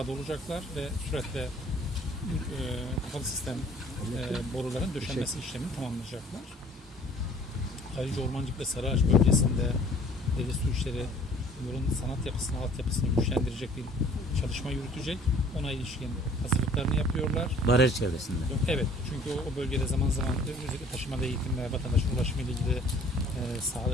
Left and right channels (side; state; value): both; normal; correlation 0.54